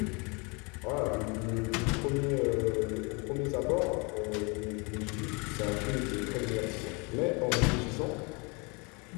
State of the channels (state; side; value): quieter; right; 30.3 dB